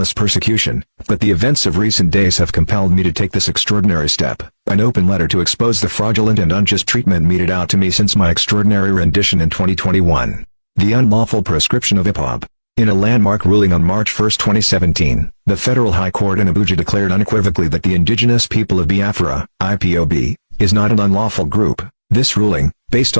persecution, but the events of recent days have compelled me to take this extraordinary step, an open letter to expose the fraudulent and unjust treatment meted out to me since my extraordinary rendition in 2021. The unlawful proscription of IPOB. In a landmark ruling on March 1, 2017, the Federal High Court in Abuja declared unequivocally that the indigenous people of Biafra, IPOB, is not an unlawful group. This ruling, based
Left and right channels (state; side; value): inverted; both; correlation -1.00